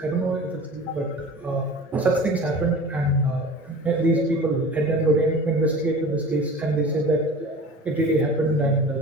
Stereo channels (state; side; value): normal; both; correlation 0.38